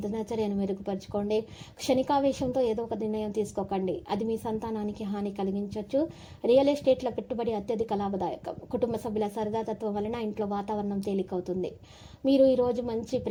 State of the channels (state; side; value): identical; both; correlation 1.00